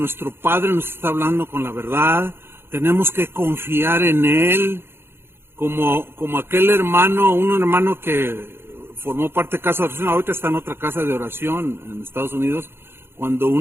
Padre nos está hablando con la verdad. Tenemos que confiar en Él, como aquel hermano, un hermano que formó parte de casa de oración, ahorita está en otra casa de oración en Estados Unidos, cuando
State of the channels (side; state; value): left; late; 0.11 ms